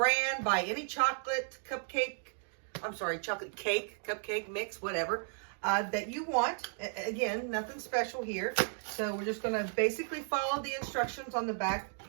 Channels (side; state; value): left; silent; 55 dB below the other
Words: Buy any chocolate cake, cupcake mix, whatever, that you want. Again, nothing special here. So we're just going to basically follow the instructions on the back